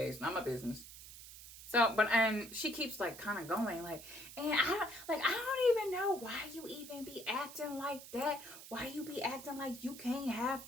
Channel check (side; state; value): right; noise; hiss, 15 dB below the sound